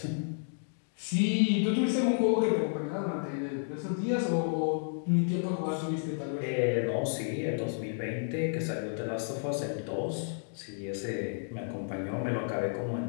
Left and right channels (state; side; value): silent; right; digital silence